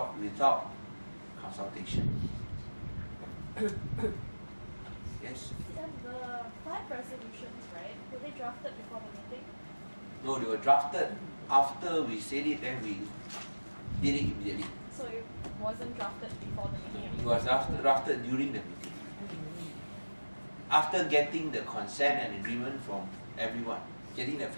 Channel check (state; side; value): inverted; both; correlation -1.00